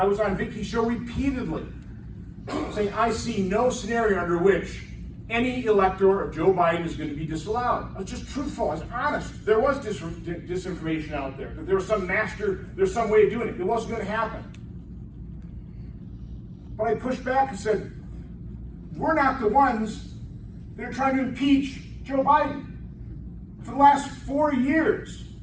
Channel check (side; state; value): both; identical; correlation 1.00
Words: was on Vicky's show repeatedly saying I see no scenario under which any elector of Joe Biden is going to be disallowed. I was just truthful, I was honest. There was disinformation out there. There was some there's some way of doing it. It wasn't going to happen. But I pushed back and said, we're not the ones that are trying to impeach Joe Biden. For the last 4 years,